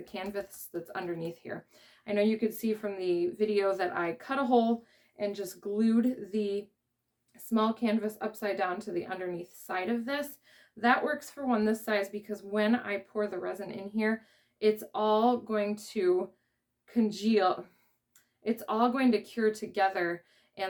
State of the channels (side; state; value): both; identical; correlation 1.00